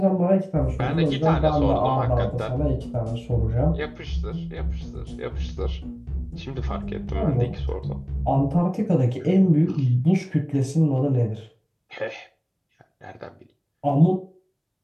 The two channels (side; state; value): both; identical; correlation 1.00